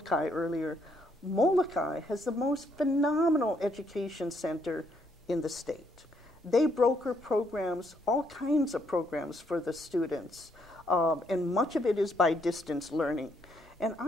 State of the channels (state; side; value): normal; both; correlation 0.72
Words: earlier. Molokai has the most phenomenal education center in the state. They broker programs, all kinds of programs for the students, and much of it is by distance learning. And